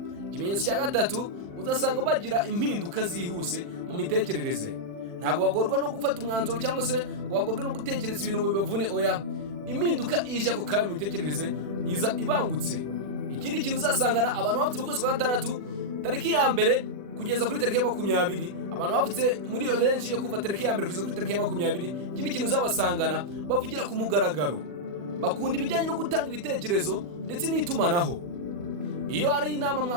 Ikimenyetso cya gatatu uzasanga bagira impinduka zihuse mu mitekerereze. Ntabwo bagorwa no gufata umwanzuro cyangwa se ngo bagorwe no gutekereza ibintu ngo bibavune. Oya, impinduka ije ako kanya mu mitekerereze iza ibangutse. Ikindi kintu uzasangana abantu bavutse mu kwezi kwa gatandatu tariki ya mbere kugeza kuri tariki ya 20, abantu bavutse muri iyo range yo kuva tariki ya mbere kugeza kuri tariki ya 20. Ikindi kintu uzabasangana bavugira ku mugaragaro, bakunda ibijyanye no gutanga ibitekerezo ndetse n'itumanaho. Iyo ari inama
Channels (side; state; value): left; late; 40 ms